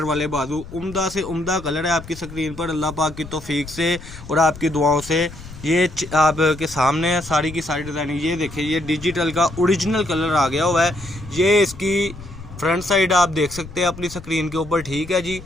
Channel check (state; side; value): noise; left; rumble, 15 dB below the sound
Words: वाले बाजू उम्दा से उम्दा कलर है आपकी स्क्रीन पर। अल्लाह पाक की तौफीक से और आपकी दुआओं से ये आपके सामने है सारी की सारी डिज़ाइनिंग। ये देखें, ये डिजिटल का ओरिजिनल कलर आ गया हुआ है। ये इसकी फ्रंट साइड आप देख सकते हैं अपनी स्क्रीन के ऊपर, ठीक है जी।